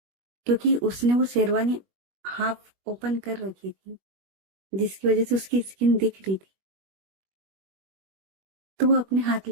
क्योंकि उसने वो शेरवानी हाफ ओपन कर रखी थी, जिसकी वजह से उसकी स्किन दिख रही थी। तो वो अपने हाथ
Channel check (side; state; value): left; late; 21 ms